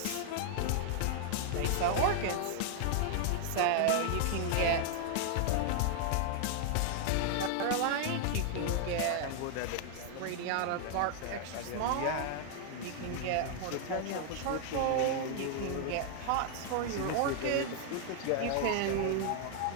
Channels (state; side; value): different; both; correlation 0.00